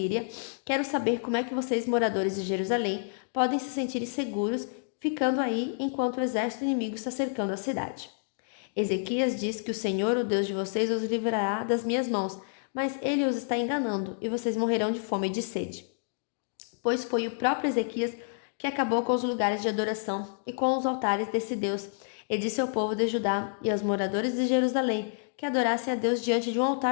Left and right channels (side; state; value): right; silent; digital silence